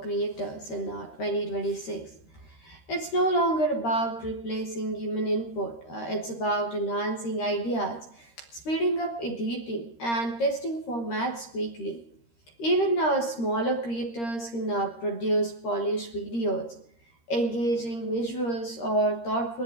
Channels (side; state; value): right; late; 13 ms